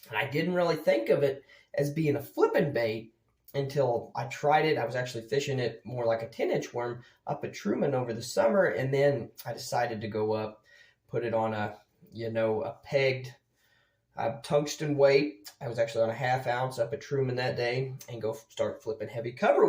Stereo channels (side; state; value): both; identical; correlation 1.00